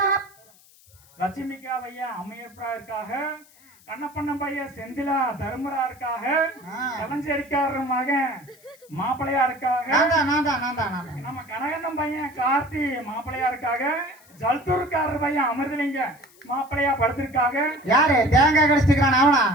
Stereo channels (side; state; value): left; noise; hiss, 27 dB below the sound